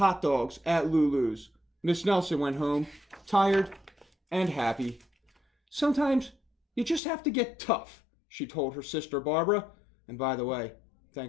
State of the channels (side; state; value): right; drops out; at 7.0 s